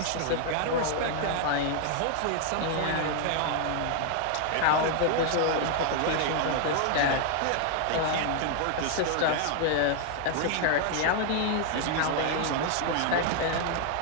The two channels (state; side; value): different; both; correlation 0.00